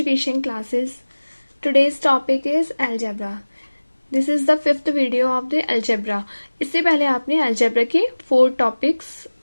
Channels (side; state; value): both; inverted; correlation -1.00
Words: Classes. Today's topic is algebra. This is the fifth video of the algebra. इससे पहले आपने algebra के 4 topics